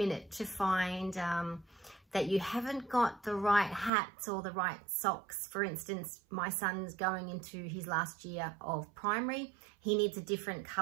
to find that you haven't got the right hats or the right socks. For instance, my son's going into his last year of primary. He needs a different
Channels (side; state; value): left; drops out; at 3.9 s